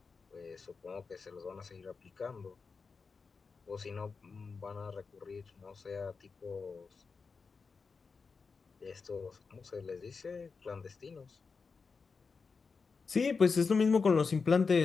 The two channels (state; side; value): quieter; right; 4.9 dB